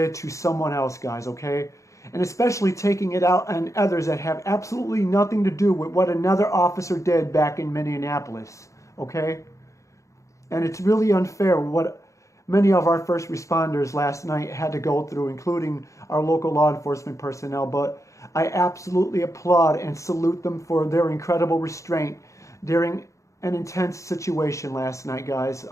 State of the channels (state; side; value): late; right; 0.15 ms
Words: to someone else, guys, okay? And especially taking it out on others that have absolutely nothing to do with what another officer did back in Minneapolis, okay? And it's really unfair what many of our first responders last night had to go through, including our local law enforcement personnel. But I absolutely applaud and salute them for their incredible restraint during an intense situation last night, guys.